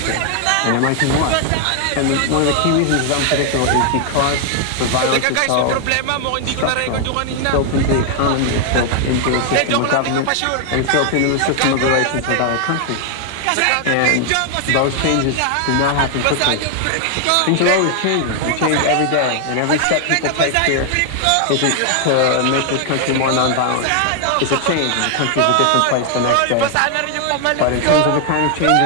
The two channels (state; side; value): different; both; correlation 0.00